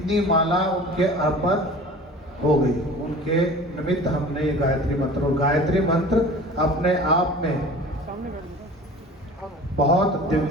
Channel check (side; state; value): both; normal; correlation 0.41